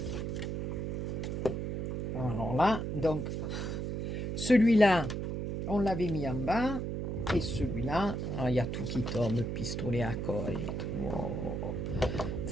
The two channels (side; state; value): right; noise; hum, 2 dB below the sound